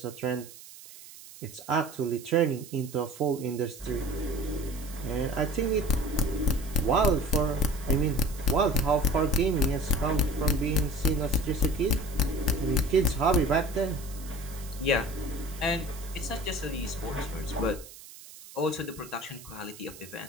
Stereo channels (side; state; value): right; noise; hiss, 17 dB below the sound